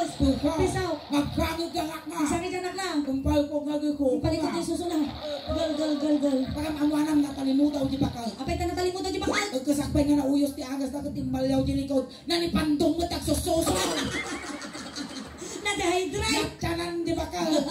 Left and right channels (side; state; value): both; identical; correlation 1.00